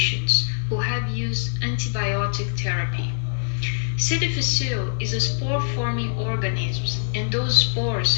who have used antibiotic therapy. C. difficile is a spore-forming organism, and those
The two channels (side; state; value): right; silent; 63 dB below the other